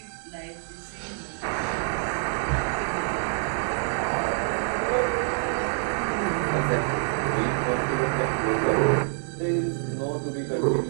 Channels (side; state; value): left; silent; digital silence